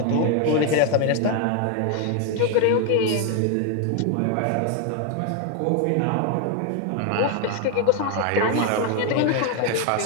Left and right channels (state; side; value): different; both; correlation 0.01